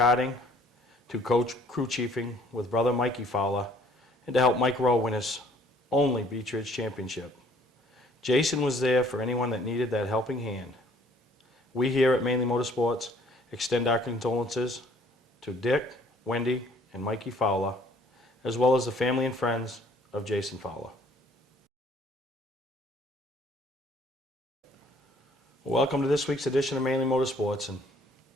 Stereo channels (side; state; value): both; normal; correlation 0.58